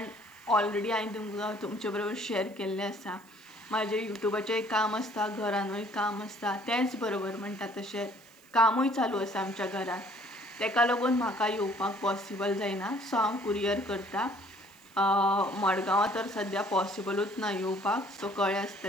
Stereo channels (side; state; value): right; noise; hiss, 28 dB below the sound